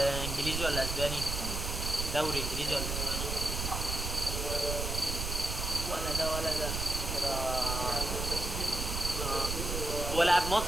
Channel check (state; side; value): noise; right; rumble, 3 dB below the sound